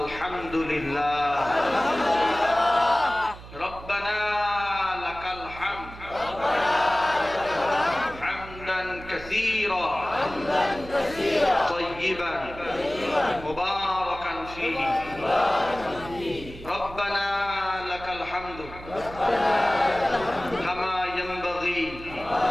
রব্বানা লাকাল হামদ হামদান কাসীরা তাইয়িবান মুবারাকান ফীহি। রব্বানা লাকাল হামদু কামা ইয়ানবাগী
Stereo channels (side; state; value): right; noise; hum, 15 dB below the sound